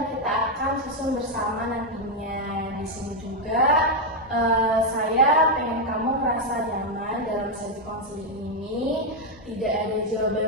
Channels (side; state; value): both; normal; correlation 0.02